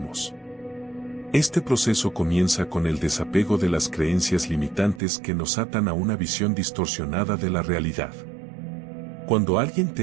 Este proceso comienza con el desapego de las creencias limitantes que nos atan a una visión distorsionada de la realidad. Cuando alguien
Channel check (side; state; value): left; drops out; at 5.0 s